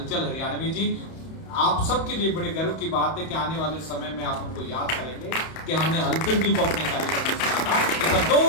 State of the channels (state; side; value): late; right; 31 ms